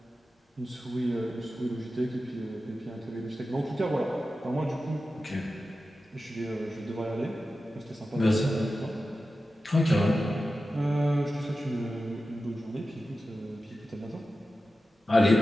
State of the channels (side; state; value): both; normal; correlation 0.93